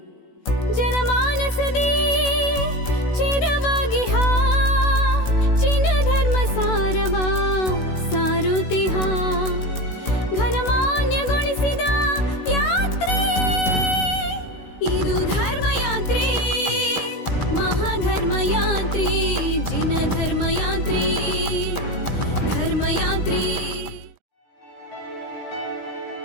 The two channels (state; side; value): late; right; 16 ms